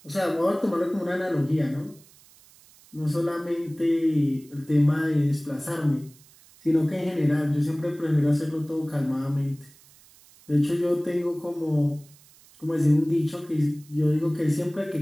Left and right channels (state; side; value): noise; right; hiss, 26 dB below the sound